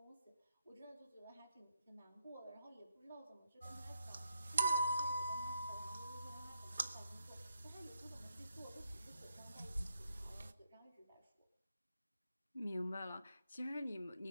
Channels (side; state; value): both; inverted; correlation -0.81